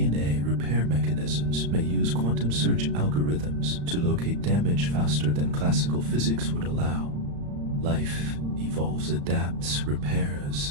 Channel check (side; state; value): left; late; 35 ms